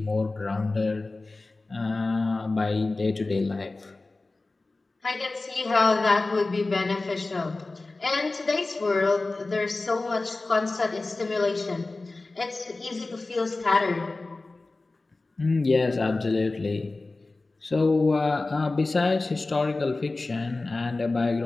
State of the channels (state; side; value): quieter; right; 3.3 dB